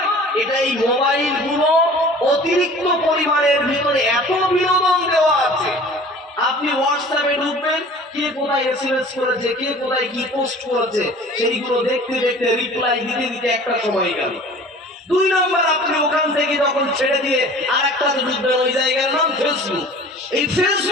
এটা এই মোবাইল গুলো অতিরিক্ত পরিমাণের ভিতরে এত বিনোদন দেওয়া আছে। আপনি হোয়াটসঅ্যাপে ঢুকবেন, কে কোথায় এসএমএস করেছে, কে কোথায় কি পোস্ট করেছে, সেইগুলো দেখতে দেখতে রিপ্লাই দিতে দিতে একটা সময় গেল। 2 নম্বর, আপনি ওখান থেকে যখন ছেড়ে দিয়ে আর একটা ঢুকবেন, ওই জায়গার নাম ফেসবুক। এই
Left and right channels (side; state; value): both; normal; correlation 0.45